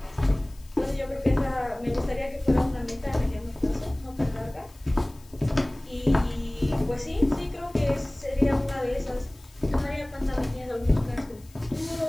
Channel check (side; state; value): left; noise; hiss, 27 dB below the sound